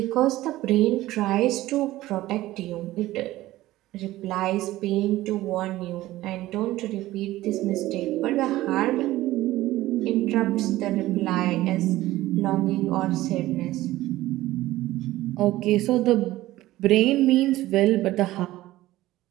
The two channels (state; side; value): quieter; left; 16.3 dB